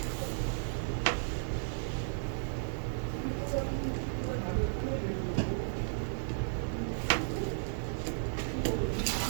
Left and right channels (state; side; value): silent; left; digital silence